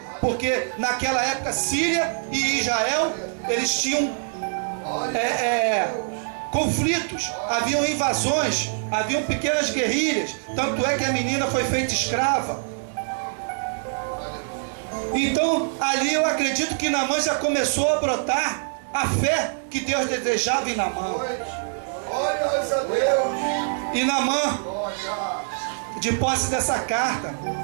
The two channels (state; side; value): silent; left; digital silence